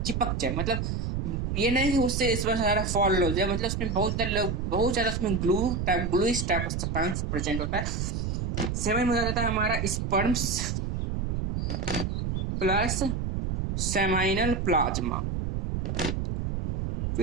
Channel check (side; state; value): right; noise; rumble, 1 dB below the sound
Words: जाए, मतलब ये नहीं कि उससे इसमें सारा फॉल हो जाए, मतलब उसमें बहुत ज्यादा उसमें gluish type of substance present होता है। सेवन में जाता है हमारा स्पर्म्स प्लस सेमाइनल प्लाज्मा।